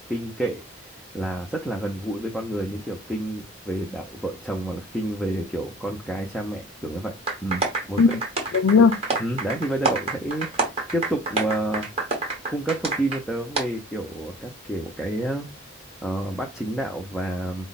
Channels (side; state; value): both; normal; correlation 0.48